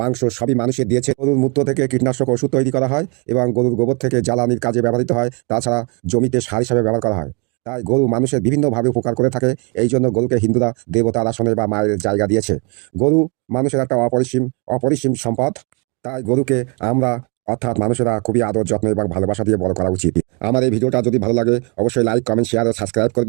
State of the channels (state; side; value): quieter; left; 33.1 dB